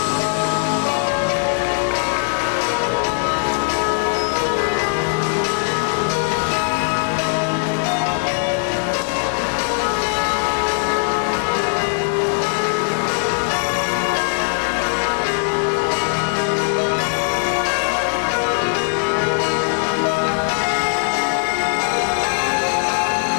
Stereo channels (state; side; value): silent; right; digital silence